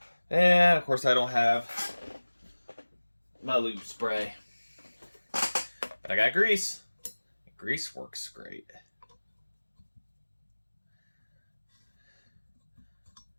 And, of course, I don't have my lube spray. But I got grease. Grease works great.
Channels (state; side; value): inverted; both; correlation -1.00